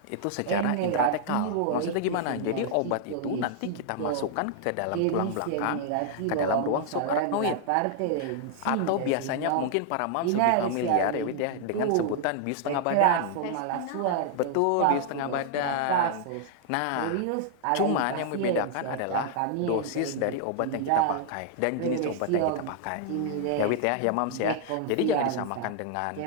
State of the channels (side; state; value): both; different; correlation -0.01